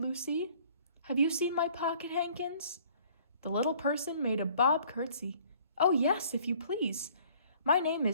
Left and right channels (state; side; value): inverted; both; correlation -0.56